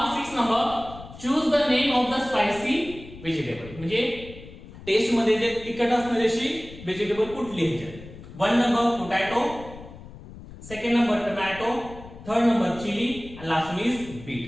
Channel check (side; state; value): left; noise; rumble, 16 dB below the sound